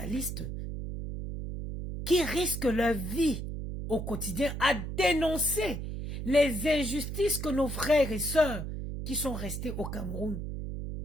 qui risquent leur vie au quotidien à dénoncer les injustices que nos frères et sœurs qui sont restés au Cameroun,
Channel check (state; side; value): noise; right; hum, 5 dB below the sound